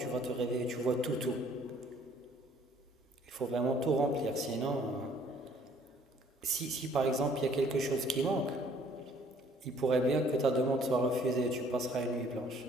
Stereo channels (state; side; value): normal; both; correlation 0.60